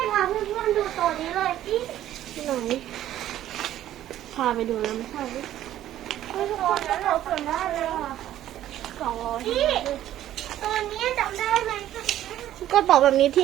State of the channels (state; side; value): quieter; left; 12.6 dB